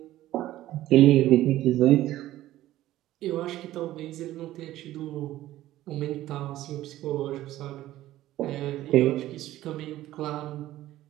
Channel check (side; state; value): left; quieter; 14.7 dB